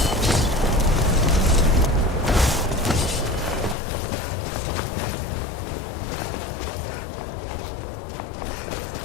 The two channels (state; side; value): drops out; right; at 3.8 s